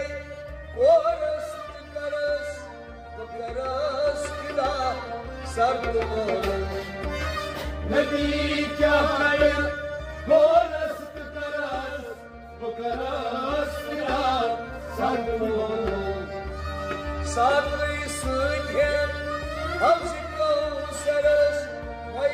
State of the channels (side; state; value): both; identical; correlation 1.00